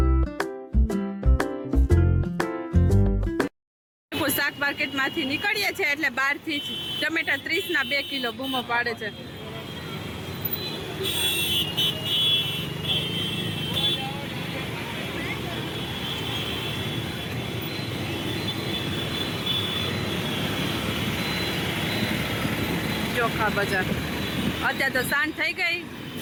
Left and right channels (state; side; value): identical; both; correlation 1.00